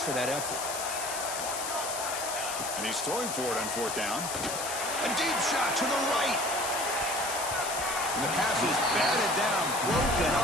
that effort. And he's throwing for it on fourth down. A deep shot to the right. And the pass is batted down, broken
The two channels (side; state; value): left; noise; hiss, 5 dB below the sound